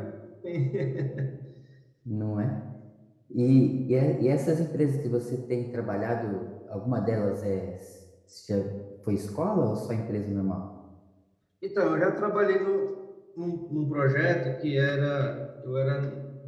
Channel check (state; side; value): identical; both; correlation 1.00